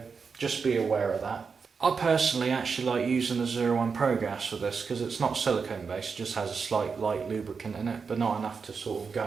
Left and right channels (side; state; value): left; quieter; 5.4 dB